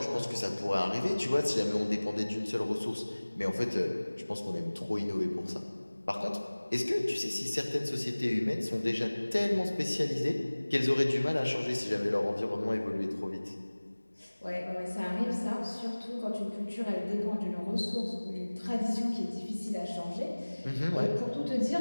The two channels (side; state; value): both; inverted; correlation -1.00